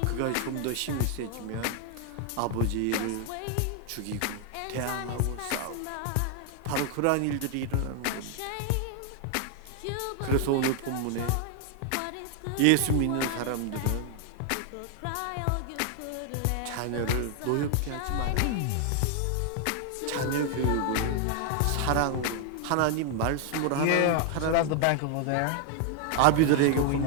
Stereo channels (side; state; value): both; different; correlation 0.00